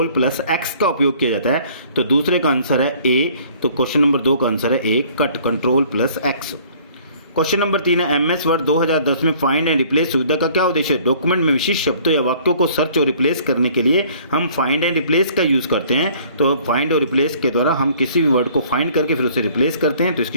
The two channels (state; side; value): inverted; both; correlation -0.55